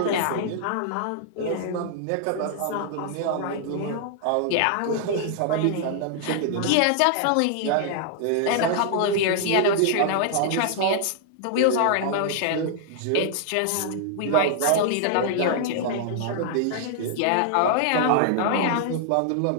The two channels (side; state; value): both; different; correlation -0.01